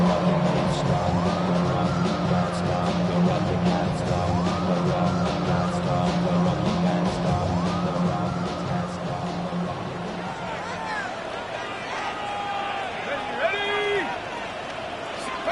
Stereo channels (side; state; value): both; identical; correlation 1.00